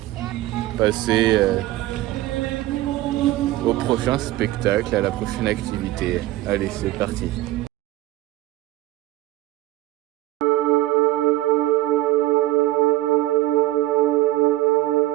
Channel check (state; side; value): quieter; left; 16.4 dB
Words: passer au prochain spectacle, à la prochaine activité. Allez, c'est parti.